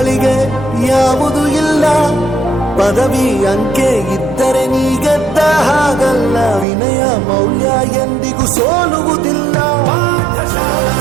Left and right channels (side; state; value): left; drops out; at 6.7 s